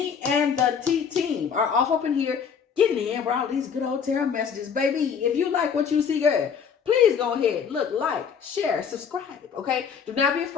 and the T team are off up in here getting in with all these good old tarot messages. Baby, if you like what you see, girl, please go ahead, look, like, share, subscribe, okay? Do not be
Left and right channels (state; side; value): quieter; right; 6.9 dB